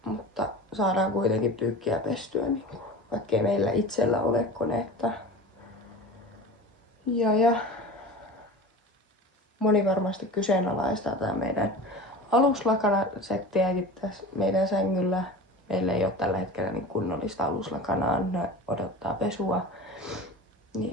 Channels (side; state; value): both; normal; correlation 0.35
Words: Mutta saadaan kuitenkin pyykkiä pestyä, niin vaikkei meillä itsellä ole koneetta. Ja moni varmasti kyseenalaistaa tää meidän aluslakanasettiäkin tässä meidän sängyllä. Meillä ei ole tällä hetkellä niin kunnollista aluslakanaa, ne odottaa pesua.